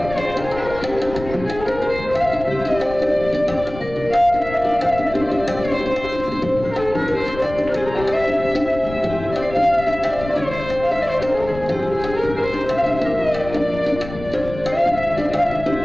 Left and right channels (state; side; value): noise; left; rumble, 12 dB below the sound